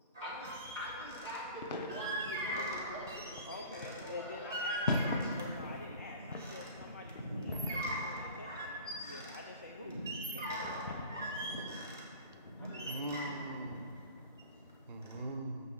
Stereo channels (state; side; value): inverted; both; correlation -0.41